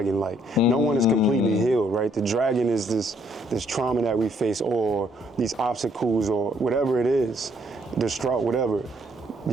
Like, no one is completely healed, right? The dragon is this trauma that we face, or these obstacles, or whatever it is, distraught, whatever.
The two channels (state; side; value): normal; both; correlation 0.68